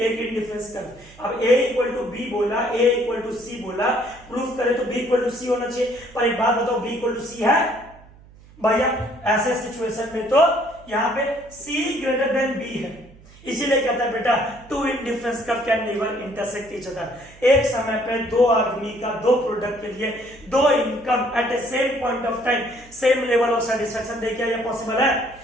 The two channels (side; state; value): right; noise; hum, 23 dB below the sound